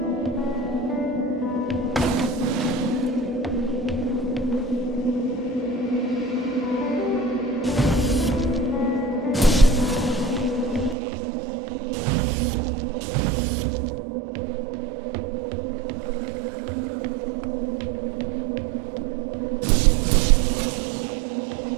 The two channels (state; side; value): drops out; left; at 11.0 s